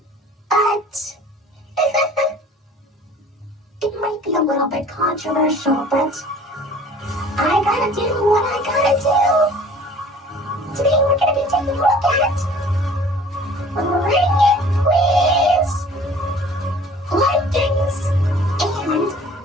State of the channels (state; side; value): normal; both; correlation 0.49